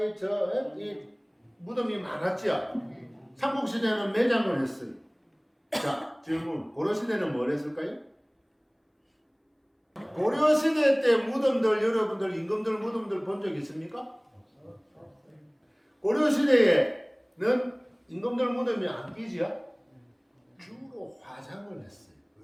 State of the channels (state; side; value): identical; both; correlation 1.00